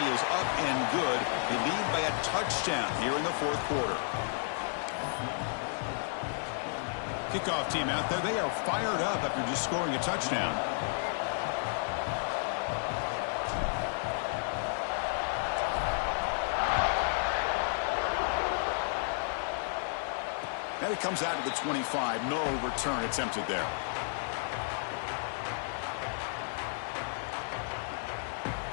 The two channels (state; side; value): silent; right; 56 dB below the other